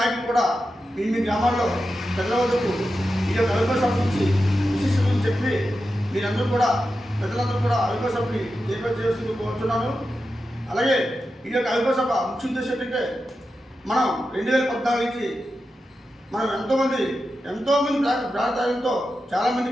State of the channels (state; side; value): normal; both; correlation 0.90